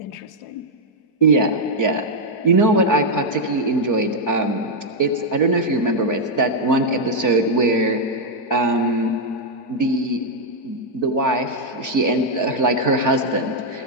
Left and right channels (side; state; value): right; late; 4.6 ms